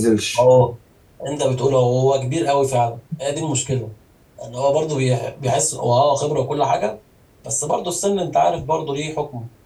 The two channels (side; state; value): both; identical; correlation 1.00